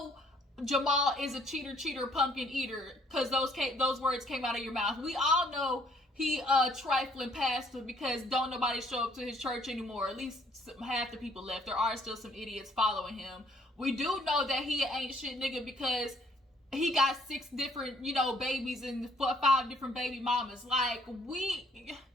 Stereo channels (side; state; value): both; normal; correlation 0.63